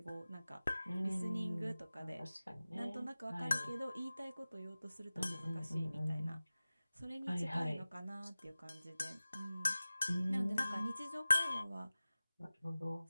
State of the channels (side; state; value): both; inverted; correlation -0.97